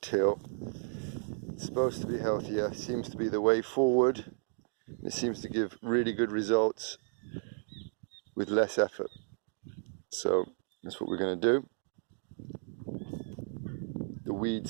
It's supposed to be healthier, seems to be the way forward It seems to give really good results with less effort. So that's what we're going to do. The weeds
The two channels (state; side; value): silent; left; digital silence